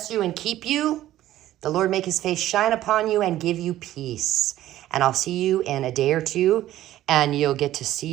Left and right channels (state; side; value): quieter; left; 13.9 dB